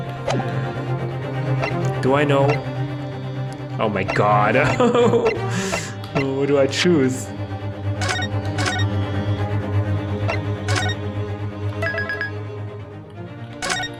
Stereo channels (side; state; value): both; identical; correlation 1.00